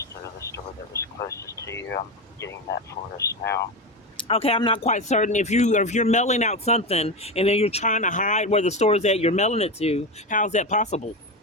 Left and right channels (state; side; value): normal; both; correlation 0.18